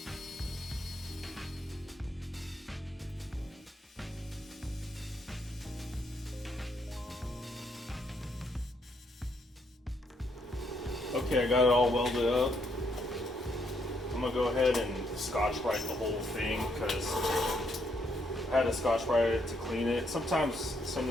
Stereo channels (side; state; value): both; normal; correlation 0.74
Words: Okay, I got it all welded up. I'm gonna go ahead and Scotch-Brite the whole thing because I had to Scotch-Brite it to clean it. Sometimes some of